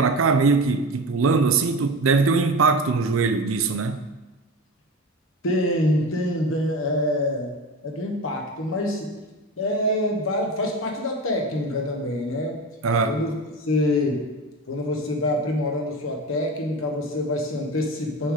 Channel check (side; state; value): both; normal; correlation 0.28